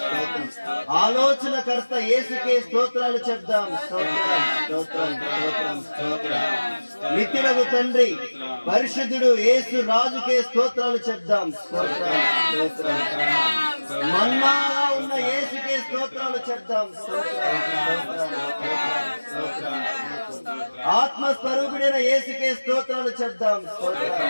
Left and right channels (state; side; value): inverted; both; correlation -1.00